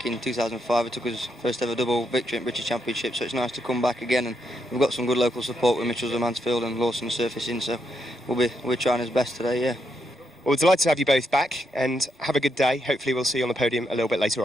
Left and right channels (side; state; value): both; normal; correlation 0.79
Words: in 2005. It took us first ever double victory at British Championship, so it's nice to come back again. And we've got some good local support with Mitchells and Mansfield and Lawson surfacing, so we're trying our best today, yeah. Well, we're delighted to have you both back, and have a good day. Hopefully we'll see you on the podium a little bit later